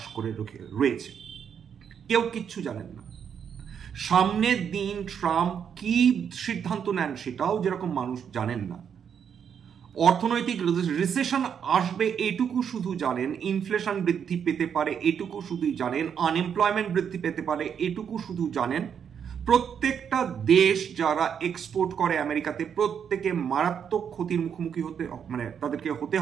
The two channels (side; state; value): left; quieter; 7.8 dB